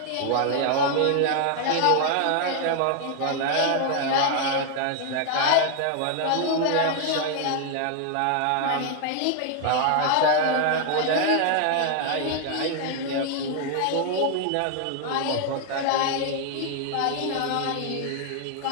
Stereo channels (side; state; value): both; different; correlation 0.00